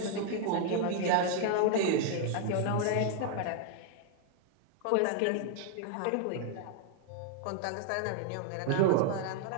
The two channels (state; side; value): different; both; correlation 0.00